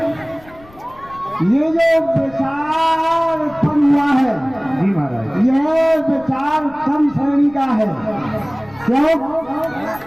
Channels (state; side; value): noise; left; rumble, 24 dB below the sound